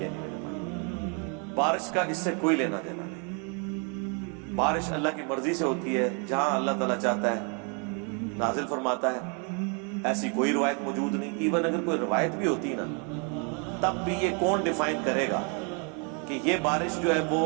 نہیں میرے بھائی. بارش کا اس سے کوئی لینا دینا نہیں. بارش اللہ کی مرضی سے ہوتی ہے, جہاں اللہ تعالیٰ چاہتا ہے نازل فرماتا ہے. ایسی کوئی روایت موجود نہیں. ایون اگر کوئی روایت بھی ہوتی نا تب بھی یہ کون ڈیفائن کرے گا کہ یہ بارش جو ہے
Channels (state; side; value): quieter; left; 37.1 dB